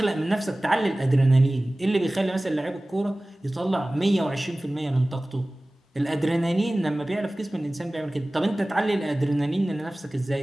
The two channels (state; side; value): normal; both; correlation 0.98